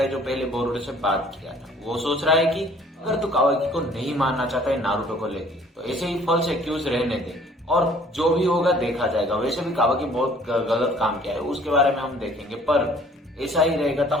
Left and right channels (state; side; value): normal; both; correlation 0.55